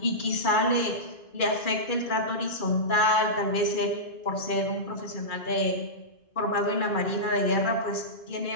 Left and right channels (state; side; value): late; right; 2.4 ms